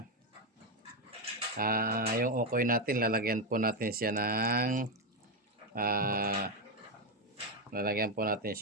Yung okoy natin, lalagyan po natin siya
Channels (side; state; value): both; normal; correlation 0.07